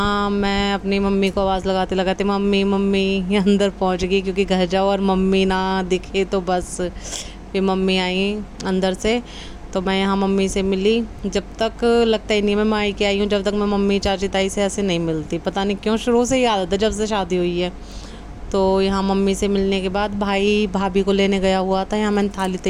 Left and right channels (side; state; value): both; identical; correlation 1.00